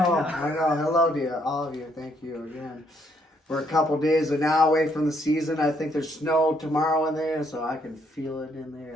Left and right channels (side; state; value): both; normal; correlation 0.71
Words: now. I know. Hello to you, all of you. Thank you again. We're a couple days now away from the season. I think there's snow tomorrow in there, so I can feel it in